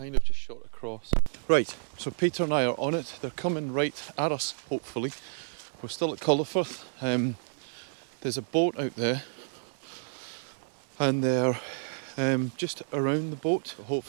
of just shot across. Right, so Peter and I are on it. They're coming right at us, hopefully. We're still at Collerford. There's a boat out there, and they're just around the boat.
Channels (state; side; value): silent; left; 58 dB below the other